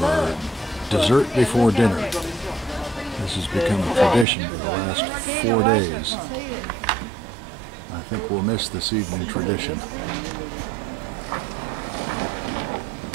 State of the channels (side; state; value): left; drops out; at 4.2 s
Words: dessert before dinner. This has become a tradition for the last 4 days. I think we'll miss this evening tradition.